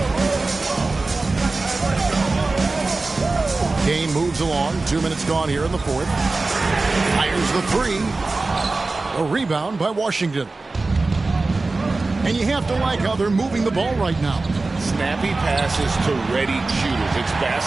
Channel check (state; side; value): quieter; left; 3.5 dB